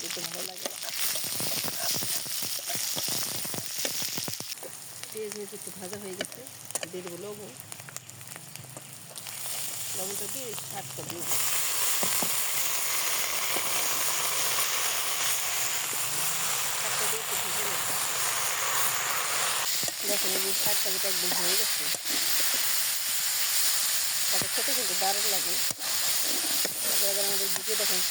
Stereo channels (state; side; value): identical; both; correlation 1.00